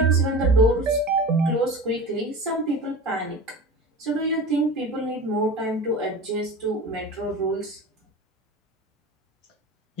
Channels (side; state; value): both; normal; correlation 0.32